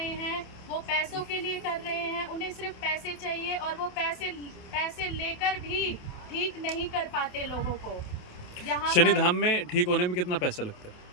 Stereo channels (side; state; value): right; late; 28 ms